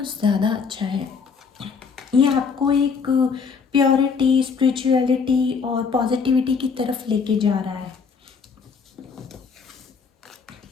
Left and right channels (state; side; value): quieter; right; 5.6 dB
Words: ज़्यादा अच्छा है। ये आपको एक प्योरिटी, स्पिरिचुअलिटी और पॉजिटिविटी की तरफ लेके जा रहा है,